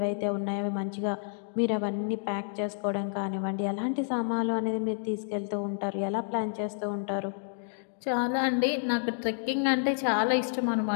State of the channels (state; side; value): silent; right; digital silence